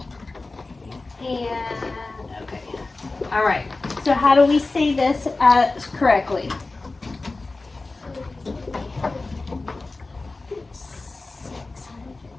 And, okay, all right. So how do we say this correctly?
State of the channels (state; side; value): quieter; right; 3.4 dB